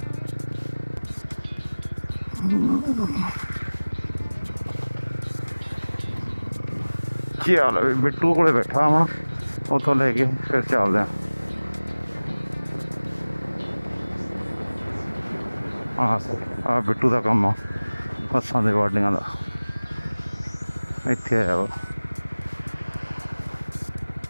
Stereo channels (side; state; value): both; inverted; correlation -1.00